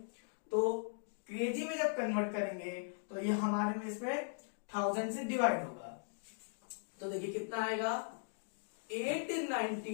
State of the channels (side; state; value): right; silent; digital silence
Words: तो केजी में जब कन्वर्ट करेंगे तो ये हमारे में इसमें 1000 से डिवाइड होगा, तो देखिए कितना आएगा